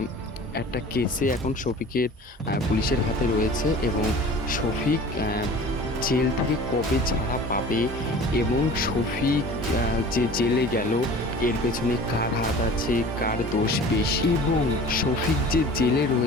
একটা কেসে এখন শফিকের পুলিশের হাতে রয়েছে এবং শফিক জেল থেকে কবে ছাড়া পাবে এবং শফিক যে জেলে গেল এর পেছনে কার হাত আছে, কার দোষ বেশি, এবং শফিক যে জেলে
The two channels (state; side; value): normal; both; correlation 0.42